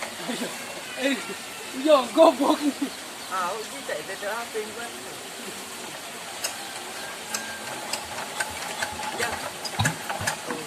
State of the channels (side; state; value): both; identical; correlation 1.00